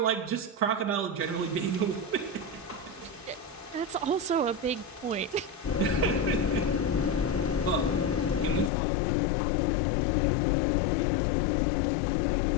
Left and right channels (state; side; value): drops out; right; at 8.7 s